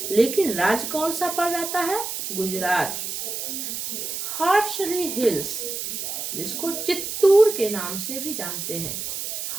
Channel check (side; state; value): right; noise; hiss, 5 dB below the sound